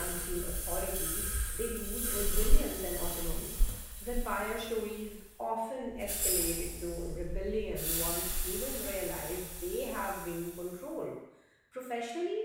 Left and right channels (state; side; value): identical; both; correlation 1.00